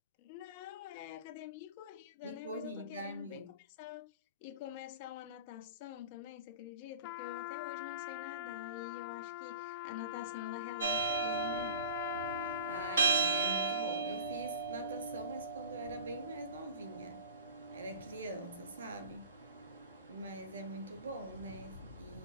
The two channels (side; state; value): both; inverted; correlation -0.36